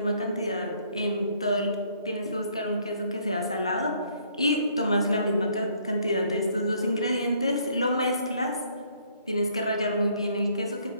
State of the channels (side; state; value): both; inverted; correlation -0.65